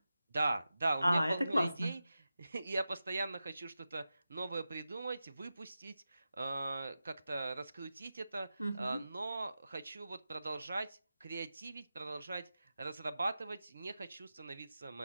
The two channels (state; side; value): inverted; both; correlation -0.92